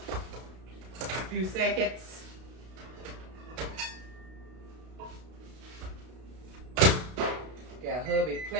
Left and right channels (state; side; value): late; left; 32 ms